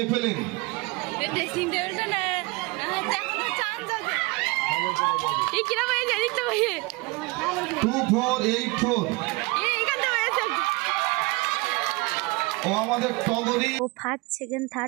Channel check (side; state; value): left; quieter; 24.9 dB